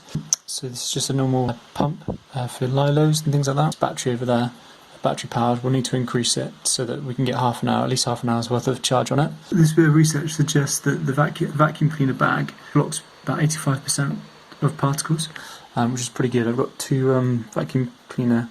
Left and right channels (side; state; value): both; identical; correlation 1.00